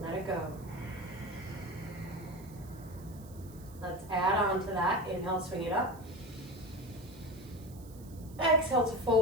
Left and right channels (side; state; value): right; noise; hiss, 23 dB below the sound